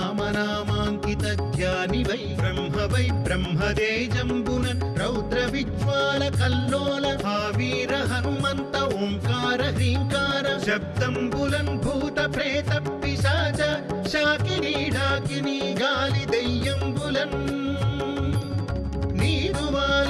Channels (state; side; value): identical; both; correlation 1.00